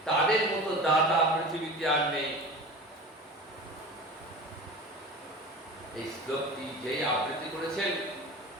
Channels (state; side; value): normal; both; correlation 0.34